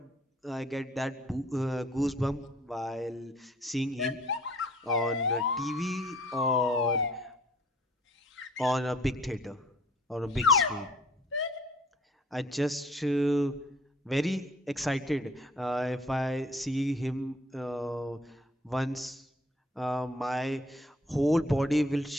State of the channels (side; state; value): both; normal; correlation 0.56